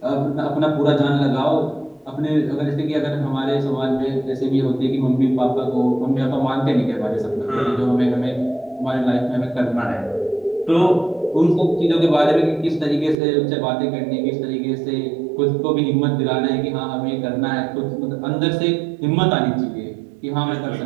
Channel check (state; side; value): drops out; left; at 13.2 s